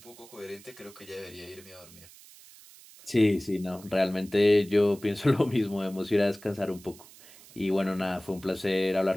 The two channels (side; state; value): right; noise; hiss, 21 dB below the sound